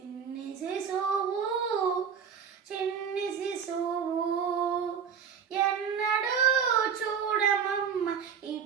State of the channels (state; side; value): quieter; left; 7.2 dB